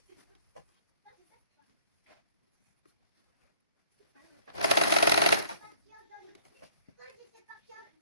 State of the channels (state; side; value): inverted; both; correlation -0.58